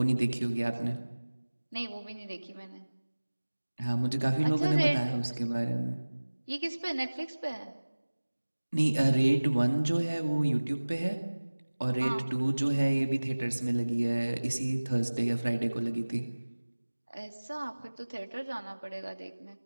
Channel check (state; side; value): inverted; both; correlation -1.00